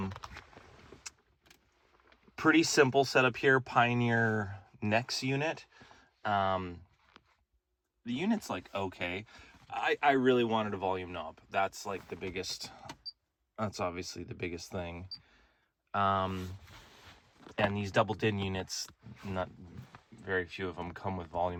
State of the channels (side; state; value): both; identical; correlation 1.00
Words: Pretty simple setup here. Pioneer Nex unit. The unit's like okay. I really wanted a volume knob. That's like the biggest. That's obviously the biggest thing. And these double DIN units, not very few of them come with